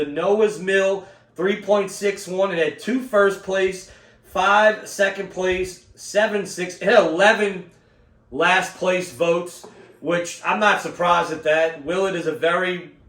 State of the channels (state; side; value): identical; both; correlation 1.00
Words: Noah's Mill, 3.61. It had 2 first place, 5 second place, 7 6. It had 11 last place votes, which I'm not surprised at that. Willett is a very,